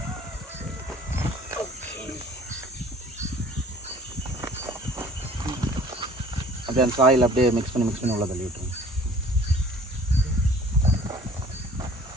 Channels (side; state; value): both; normal; correlation 0.50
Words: அப்படியே அந்த சாயில் அப்படியே மிக்ஸ் பண்ணி உள்ள தள்ளி விட்டுருங்க.